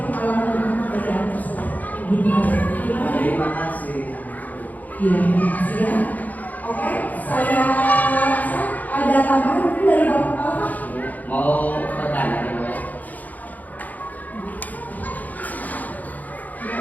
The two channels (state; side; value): late; right; 0.080 ms